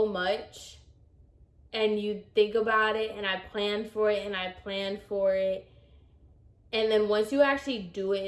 much, and you think about it, and I planned for it, and I planned for it. And then once you actually do it,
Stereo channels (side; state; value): both; identical; correlation 1.00